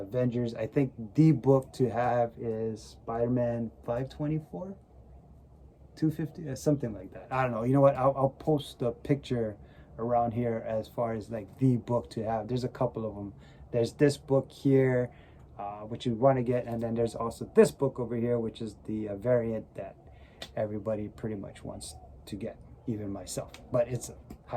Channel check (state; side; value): identical; both; correlation 1.00